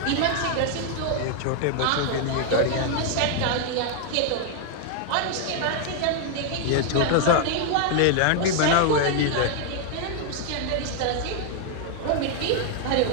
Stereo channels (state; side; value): different; both; correlation 0.00